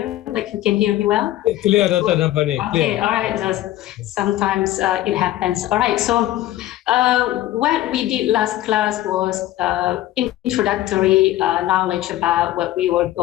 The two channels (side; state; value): right; quieter; 14.7 dB